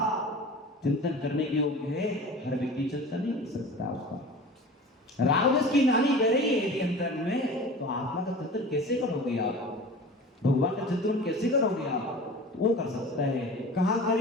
चिंतन करने के योग्य है। हर व्यक्ति चिंतन नहीं कर सकता उसका। राग द्वेष की नाली बह रही है यदि अंतर में, तो आत्मा का चिंतन कैसे करोगे आप? भगवान का चिंतन कैसे करोगे आप? वो कर सकता है। कहाँ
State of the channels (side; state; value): both; normal; correlation 0.38